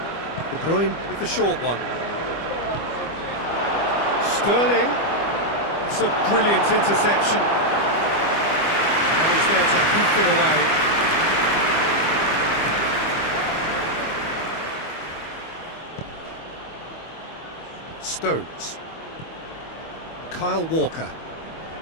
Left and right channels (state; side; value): late; right; 25 ms